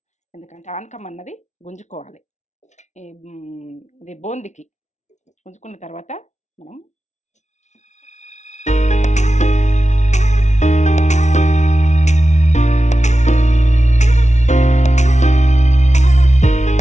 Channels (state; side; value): late; right; 0.33 ms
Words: ఎందుకంటే ఆనకం అన్నది గుంజుకోవాలి. ఇది బూందికి గుంజుకున్న తర్వాత మనం